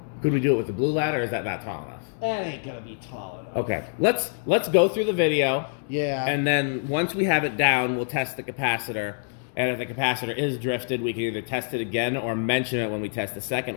Could we do it with the blue ladder, or is that not tall enough? that ain't gonna be tall enough. Okay, let's go through the video. Yeah. And then once we have it down, we'll test the capacitor. And if the capacitor is drifted, we can either test it again or mention it when we test the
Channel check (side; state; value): right; silent; digital silence